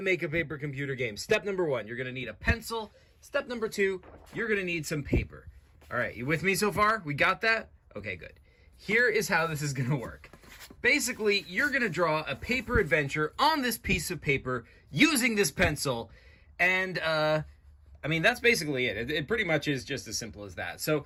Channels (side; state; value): both; identical; correlation 1.00